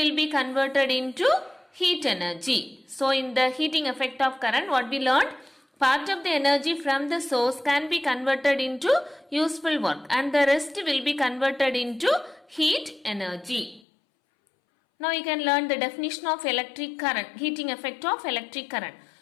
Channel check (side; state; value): right; drops out; at 13.8 s